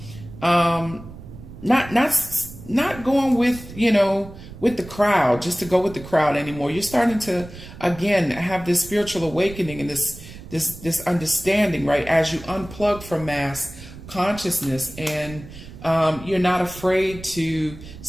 not going with, with the crowd, just to go with the crowd anymore. You're starting to, again, have this spiritual awakening and this understanding, right? As you unplug from mass consciousness and you're not afraid to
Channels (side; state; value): right; noise; rumble, 15 dB below the sound